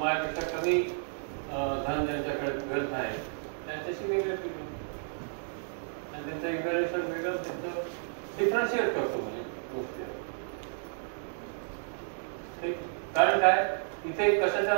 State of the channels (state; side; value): silent; left; digital silence